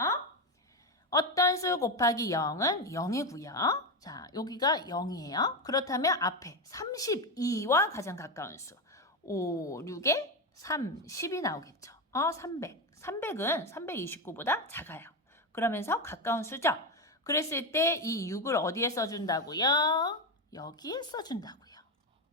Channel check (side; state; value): both; normal; correlation 0.13